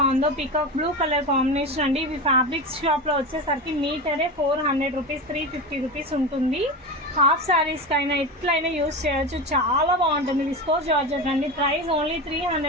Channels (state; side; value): normal; both; correlation 0.23